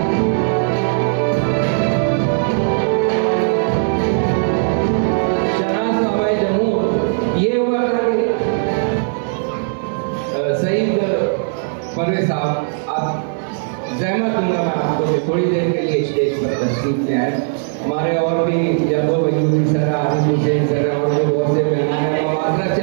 थोड़ी देर के लिए स्टेज पर तशरीफ ले आए। हमारे और भी यादव बयूरी सर, आसिफ हुसैन सर और जो बहुत से मेहमान हैं, मैं माजरत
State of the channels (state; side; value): silent; left; digital silence